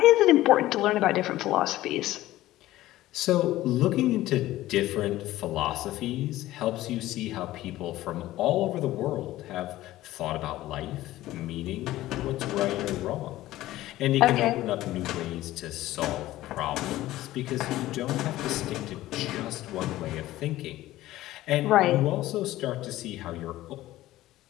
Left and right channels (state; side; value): quieter; right; 15.7 dB